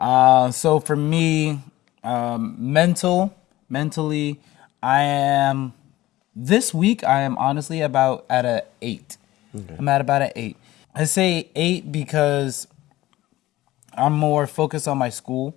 for me, mentally, this week I am honestly about at a 8. Okay. I'm at about an 8. I say 8 because I'm more focused on my school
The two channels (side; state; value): right; quieter; 16.5 dB